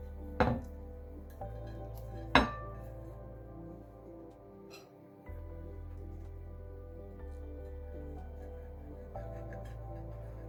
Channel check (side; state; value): both; identical; correlation 1.00